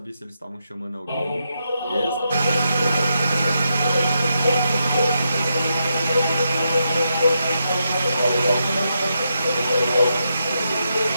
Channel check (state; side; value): inverted; both; correlation -0.83